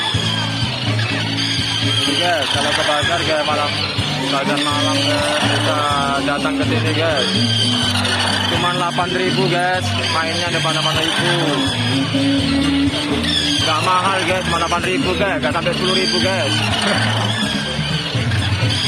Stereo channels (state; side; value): identical; both; correlation 1.00